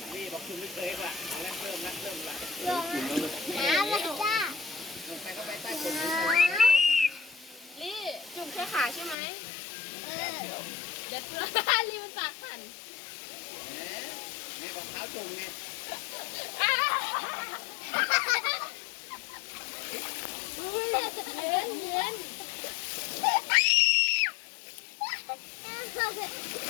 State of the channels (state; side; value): drops out; right; at 9.2 s